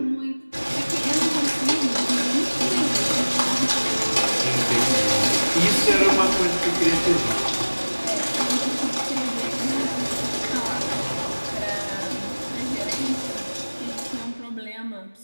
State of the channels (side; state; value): both; inverted; correlation -1.00